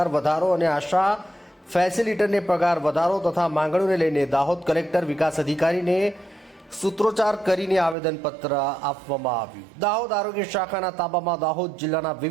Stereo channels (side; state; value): left; drops out; at 8.0 s